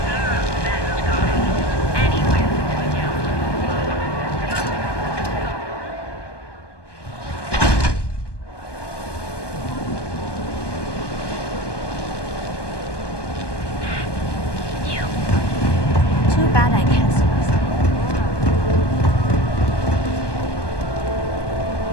Too bad I can't see myself.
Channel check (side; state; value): right; late; 1.2 ms